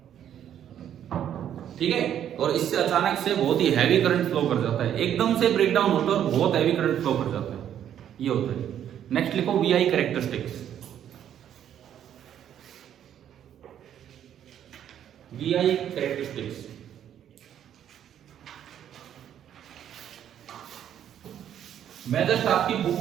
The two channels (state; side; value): quieter; left; 10.1 dB